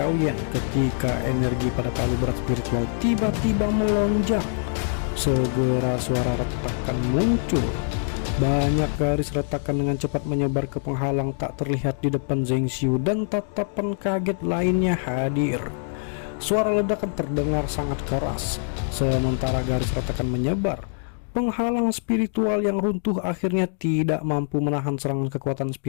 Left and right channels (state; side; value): silent; right; digital silence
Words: ketika energi pada palu berat spiritual tiba-tiba melonjak. Segera suara retakan muncul. Banyak garis retakan dengan cepat menyebar ke penghalang tak terlihat di depan Zheng Xiu dan tatapan kaget lainnya hadir. Suara ledakan terdengar sangat keras. Sementara garis retakan menyebar, penghalang spiritual yang runtuh akhirnya tidak mampu menahan serangan kekuatan